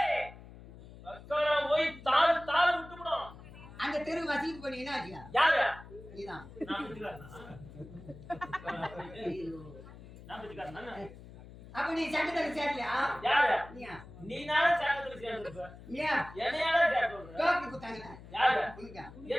போய் தாள் தாள் விட்டுவிடும். அந்த தெரு வசதிக்கு பண்ணி என்ன ஆச்சியா? யாரு? நீதான். அப்ப நீ சட்டத்துல சேரலையா? யாரு? நீயா? நீனால சட்டத்துல சேர்ந்துருப்ப. நீயா? என்னையால சேர்ந்துருப்ப. டோக்கி குத்தாங்க. யாரு? உனக்கா?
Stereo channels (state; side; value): noise; left; hum, 17 dB below the sound